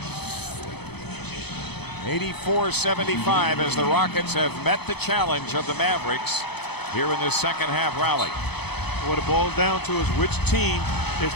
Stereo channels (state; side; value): late; right; 0.98 ms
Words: 84-75 as the Rockets have met the challenge of the Mavericks here in this second half rally. What it boils down to is which team is